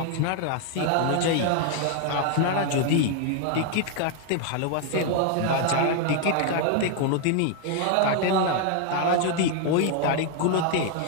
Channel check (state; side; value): different; both; correlation 0.00